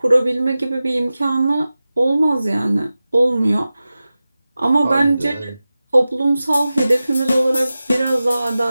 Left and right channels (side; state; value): both; inverted; correlation -0.95